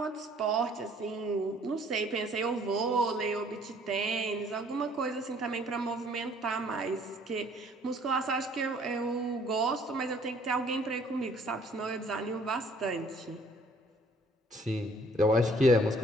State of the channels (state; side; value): normal; both; correlation 0.59